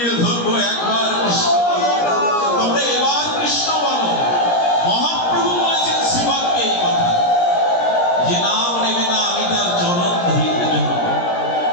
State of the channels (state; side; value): late; right; 17 ms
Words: ধরবো, একবার কৃষ্ণ। তবে এবার কৃষ্ণ বলো। মহাপ্রভু বলেছেন শ্রীপাদকে এই কথা, যে নাম নেবে না আমি তার চরণ ধরিতে ধরব।